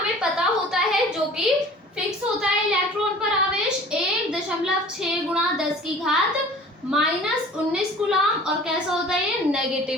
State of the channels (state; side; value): normal; both; correlation 0.45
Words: पता होता है जो कि फिक्स होता है इलेक्ट्रॉन पर आवेश 1.6 गुणा 10 की घात -19 कूलाम, और कैसा होता है ये,